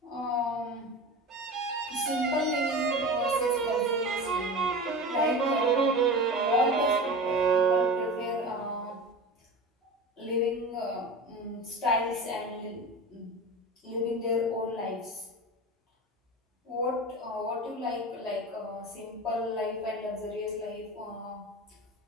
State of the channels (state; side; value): normal; both; correlation 0.30